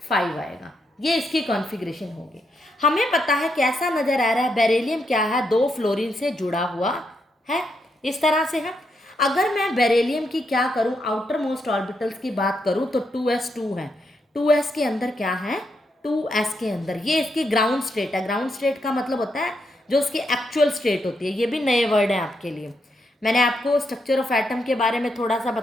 आएगा। ये इसकी कॉन्फ़िगरेशन होगी। हमें पता है कैसा नजर आ रहा है, बेरिलियम क्या है, 2 फ्लोरीन से जुड़ा हुआ है, इस तरह से है। अगर मैं बेरिलियम की क्या करूं, आउटर मोस्ट ऑर्बिटल्स की बात करूं तो 2s2 है। 2s के अंदर क्या है, 2s के अंदर ये इसकी ग्राउंड स्टेट है। ग्राउंड स्टेट का मतलब होता है जो उसकी एक्चुअल स्टेट होती है। ये भी नए वर्ड है आपके लिए। मैंने आपको स्ट्रक्चर ऑफ एटम के बारे में थोड़ा सा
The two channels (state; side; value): normal; both; correlation 0.80